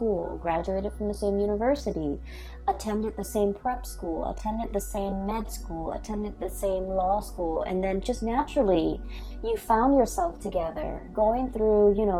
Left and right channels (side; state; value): both; identical; correlation 1.00